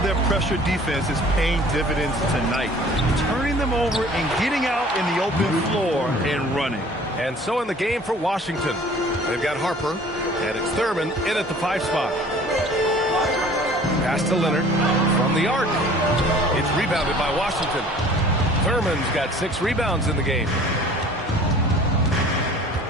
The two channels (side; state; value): both; normal; correlation 0.49